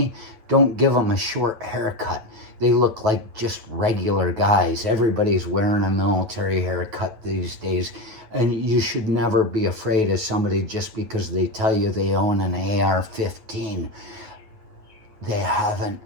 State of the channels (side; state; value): left; late; 9.2 ms